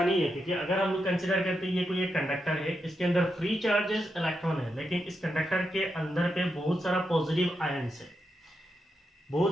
नहीं है, क्योंकि अगर हम लोग कंसिडर करते हैं ये कोई एक कंडक्टर है, इसके अंदर फ्री चार्जेस इलेक्ट्रॉन है, लेकिन इस कंडक्टर के अंदर पे बहुत सारा पॉजिटिव आयंस है,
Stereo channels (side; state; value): both; normal; correlation 0.85